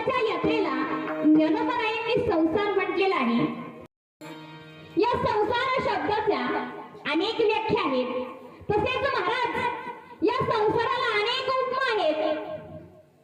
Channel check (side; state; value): both; identical; correlation 1.00